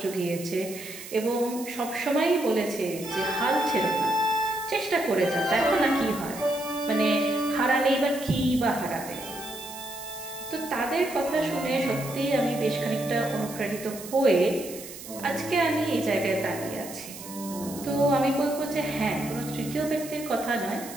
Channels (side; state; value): right; noise; hiss, 13 dB below the sound